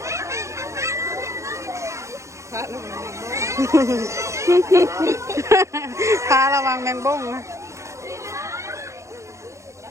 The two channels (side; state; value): left; late; 0.14 ms